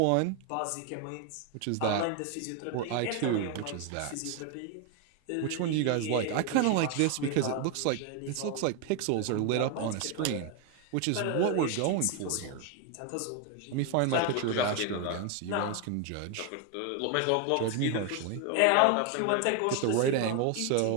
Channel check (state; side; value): different; both; correlation 0.01